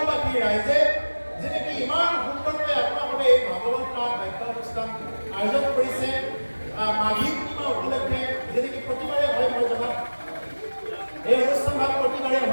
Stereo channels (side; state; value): both; inverted; correlation -1.00